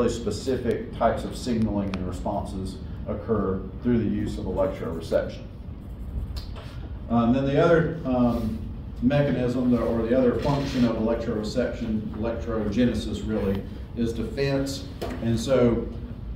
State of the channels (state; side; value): identical; both; correlation 1.00